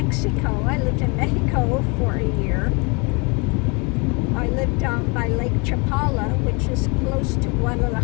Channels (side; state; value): right; quieter; 30.8 dB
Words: I lived in Mexico for a year. I lived down by Lake Chapala, which is close to